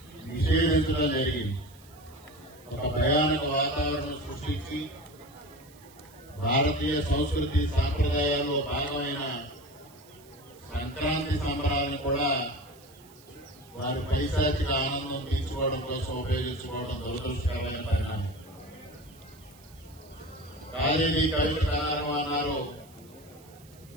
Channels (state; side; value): noise; right; hiss, 25 dB below the sound